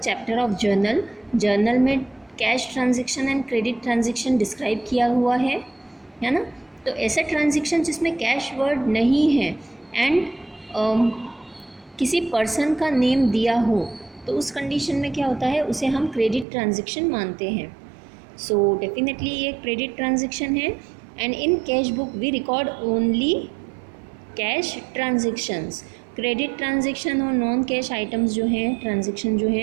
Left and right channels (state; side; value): drops out; left; at 16.4 s